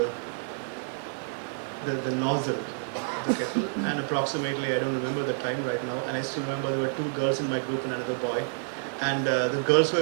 the nozzle of the kettle, and approximately, I don't remember the time right now, and I still remember there were 2 girls in my group and another boy, and the girls were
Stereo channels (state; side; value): silent; left; digital silence